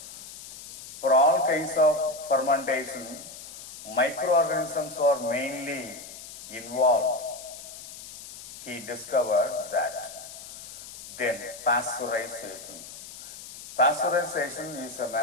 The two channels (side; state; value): left; noise; hiss, 14 dB below the sound